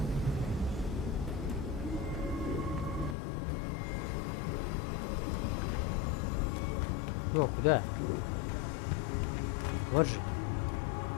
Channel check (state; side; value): drops out; right; at 3.2 s